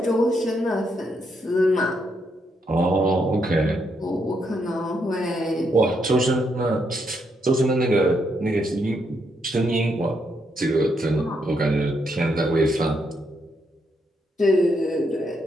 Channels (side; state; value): both; normal; correlation 0.78